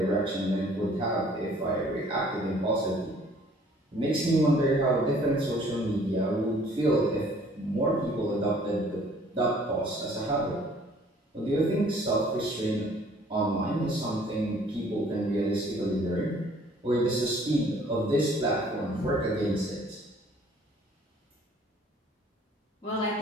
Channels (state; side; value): normal; both; correlation 0.56